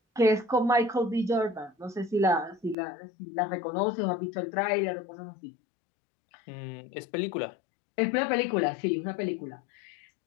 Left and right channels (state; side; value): drops out; right; at 2.8 s